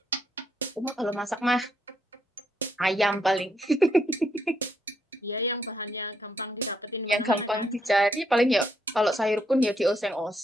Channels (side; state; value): both; normal; correlation 0.75